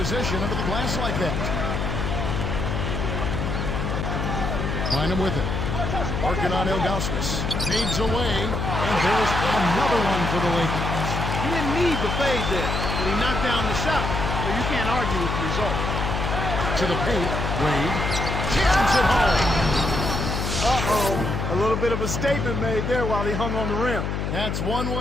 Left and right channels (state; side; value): noise; left; hum, 2 dB below the sound